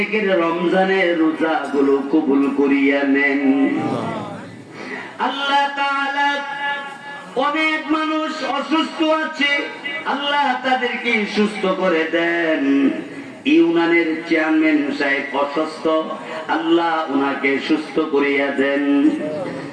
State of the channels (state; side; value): identical; both; correlation 1.00